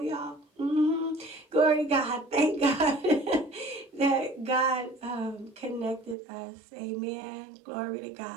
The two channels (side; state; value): left; drops out; at 6.2 s